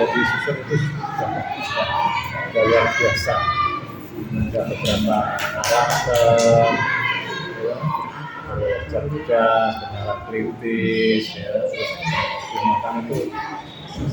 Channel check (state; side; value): identical; both; correlation 1.00